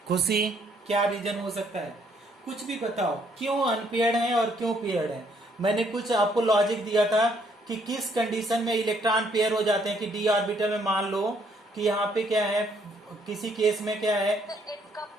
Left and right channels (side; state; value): both; normal; correlation 0.68